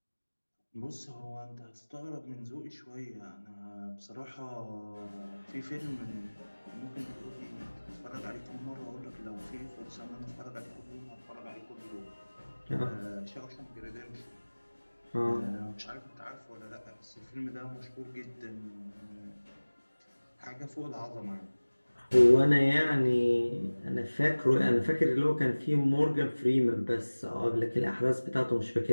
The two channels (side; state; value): both; inverted; correlation -1.00